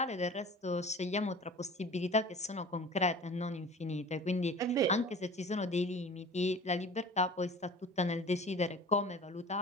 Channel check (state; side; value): normal; both; correlation 0.41